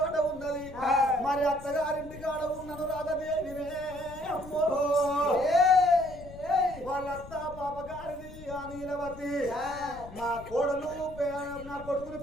ఉన్నది. మరి అత్తగారింటి కాడ ఉన్నను రాధదేవినే అమ్మో. వాళ్ళత్త పాపగారిది ఆ నీలవతి. నా కోడలు నా కొడుకుని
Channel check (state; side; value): noise; left; rumble, 16 dB below the sound